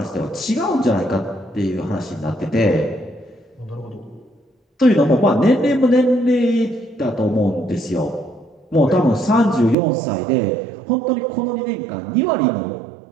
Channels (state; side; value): drops out; left; at 9.8 s